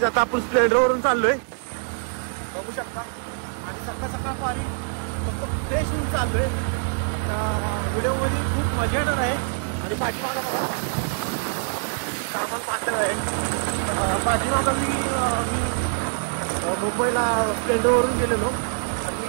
आता आपण स्प्लेंडरवरून चाललोय, बघू शकता. आणि सकाळ सकाळ पारी फक्त फ्रेश होऊन चाललोय. व्हिडिओमध्ये खूप मजा येणार आहे. आणि पाठीमागा सामान पाहणार आहे. पाठीमागा मी मुंबईला स्प्लेंडरवरून गेलेलो आणि मी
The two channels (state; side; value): silent; left; digital silence